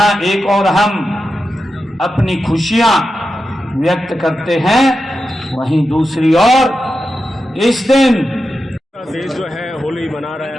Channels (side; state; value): both; normal; correlation 0.90